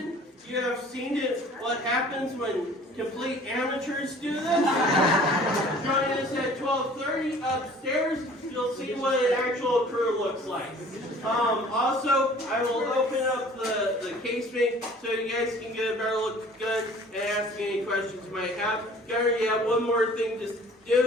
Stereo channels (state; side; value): normal; both; correlation 0.50